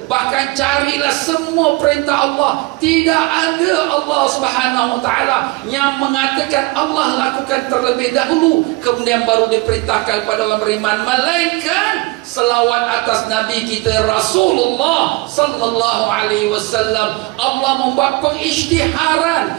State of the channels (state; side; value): quieter; left; 23.6 dB